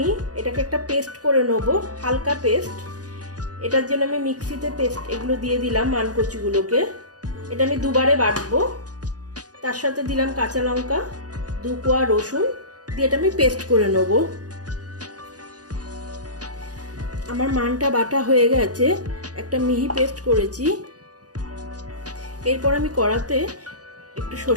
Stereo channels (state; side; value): late; left; 0.68 ms